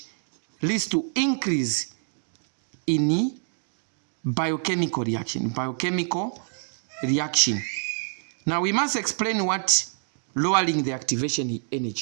leads to increase in biochemical reaction. Now we must explain what lowering the activation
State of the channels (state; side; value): silent; left; digital silence